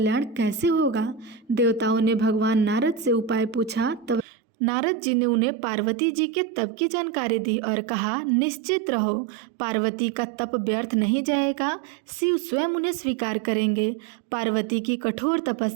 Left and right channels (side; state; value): left; drops out; at 4.2 s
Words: कैसे होगा? देवताओं ने भगवान नारद से उपाय पूछा। तब नारद जी ने उन्हें पार्वती जी के तप की जानकारी दी और कहा, निश्चित रहो, पार्वती का तप व्यर्थ नहीं जाएगा, शिव स्वयं उन्हें स्वीकार करेंगे। पार्वती की कठोर